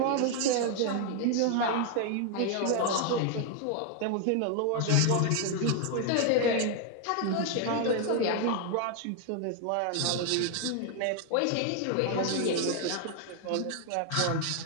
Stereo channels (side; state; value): both; different; correlation 0.00